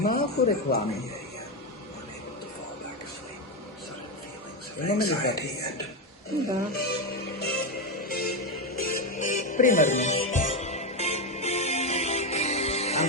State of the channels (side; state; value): both; normal; correlation 0.10